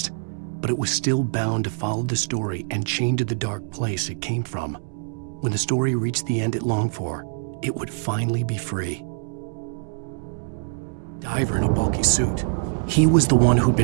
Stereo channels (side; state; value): left; silent; digital silence